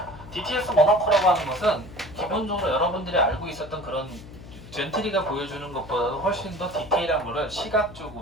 DTS 모노코라고 하는 것은 기본적으로 여러분들이 알고 있었던 그런 젠트리가 보여주는 것보다도 훨씬 더 디테일한 거를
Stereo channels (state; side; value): noise; left; hum, 16 dB below the sound